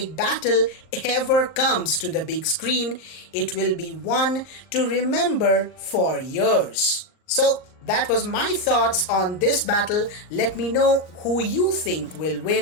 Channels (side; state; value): right; late; 38 ms